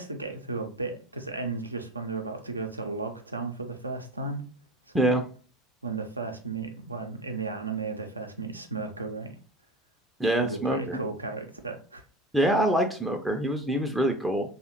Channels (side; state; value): both; normal; correlation 0.31